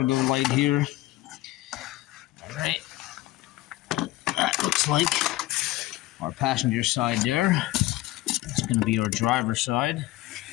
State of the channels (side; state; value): right; quieter; 17.3 dB